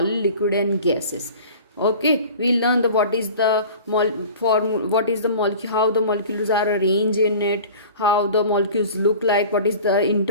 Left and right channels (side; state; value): both; inverted; correlation -0.42